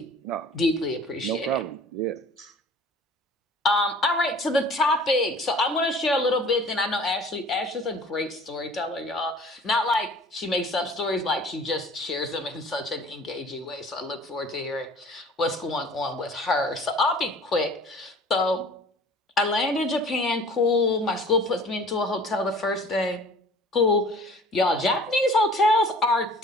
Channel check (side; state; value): both; normal; correlation 0.48